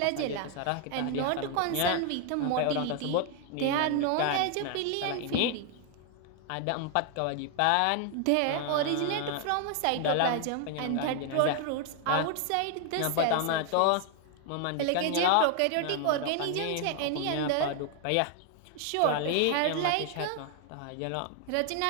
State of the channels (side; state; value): both; different; correlation 0.00